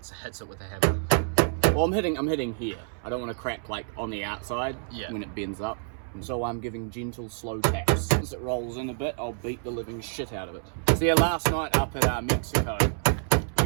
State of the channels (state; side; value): silent; left; 60 dB below the other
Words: hits it with a hammer. Well, I'm hitting here. I don't want to crack like on the outside when it bends up. And so I'm giving gentle, slow taps. As it rolls in a bit, I'll beat the living shit out of it. So yeah, last night up at Mexico,